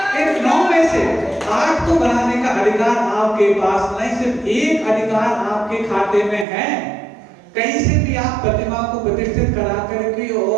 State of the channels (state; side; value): drops out; left; at 6.5 s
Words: 8 को बनाने का अधिकार आपके पास नहीं, सिर्फ एक अधिकार आपके खाते में है। कहीं से भी आप प्रतिमा को प्रतिष्ठित करा करके